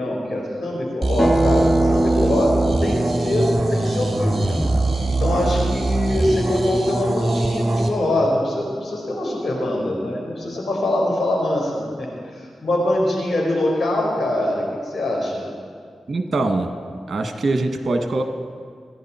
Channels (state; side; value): normal; both; correlation 0.91